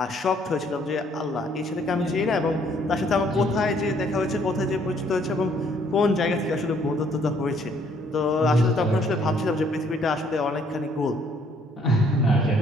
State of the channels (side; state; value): both; normal; correlation 0.64